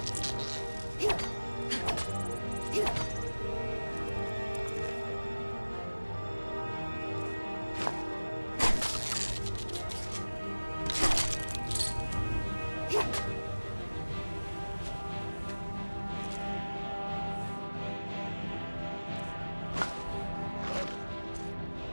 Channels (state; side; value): inverted; both; correlation -1.00